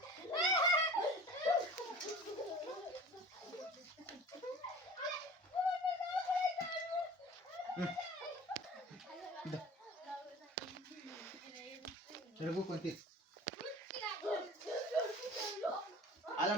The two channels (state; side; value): normal; both; correlation 0.41